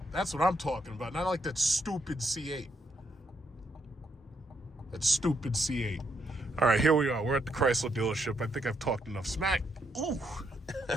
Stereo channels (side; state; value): both; normal; correlation 0.77